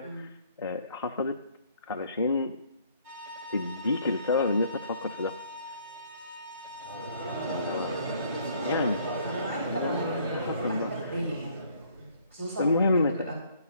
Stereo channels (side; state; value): both; inverted; correlation -0.62